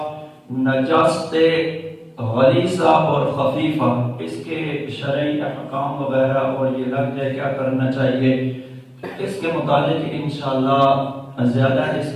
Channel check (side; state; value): both; identical; correlation 1.00